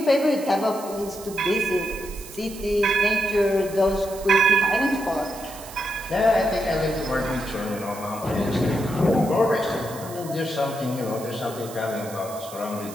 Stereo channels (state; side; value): noise; right; hiss, 16 dB below the sound